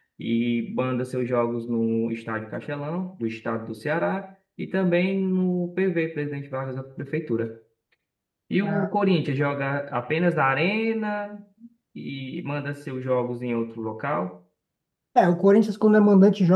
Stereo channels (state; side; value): identical; both; correlation 1.00